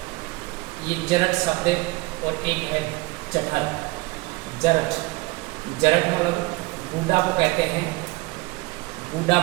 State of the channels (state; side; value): quieter; left; 23.5 dB